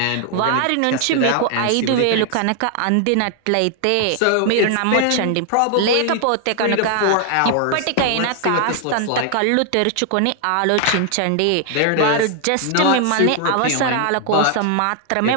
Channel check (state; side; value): different; both; correlation 0.00